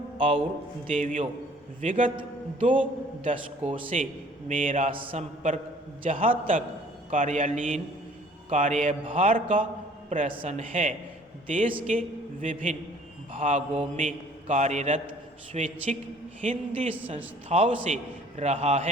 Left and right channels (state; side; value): normal; both; correlation 0.54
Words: और देवियों, विगत 2 दशकों से मेरा संपर्क जहाँ तक कार्यालयीन कार्यभार का प्रश्न है, देश के विभिन्न भागों में कार्यरत स्वैच्छिक हिंदी संस्थाओं से रहा